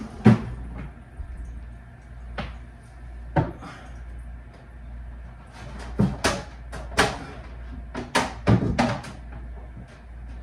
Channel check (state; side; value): identical; both; correlation 1.00